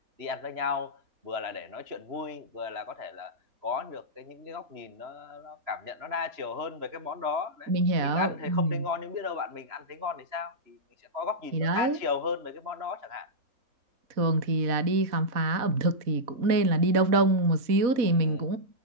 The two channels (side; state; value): left; late; 4.0 ms